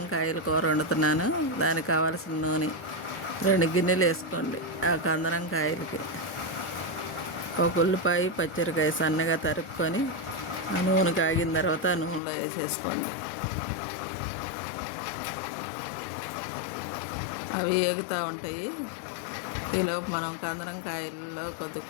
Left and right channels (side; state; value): right; drops out; at 12.2 s